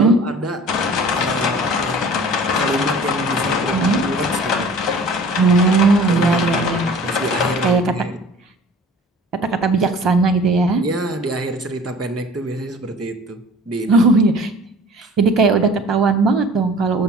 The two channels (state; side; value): normal; both; correlation 0.46